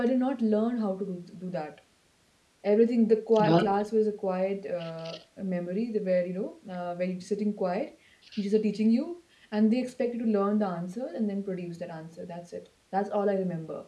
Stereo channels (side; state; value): both; identical; correlation 1.00